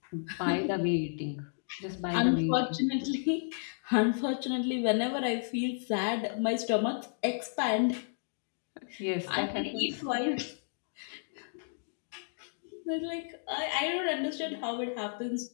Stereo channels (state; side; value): silent; right; digital silence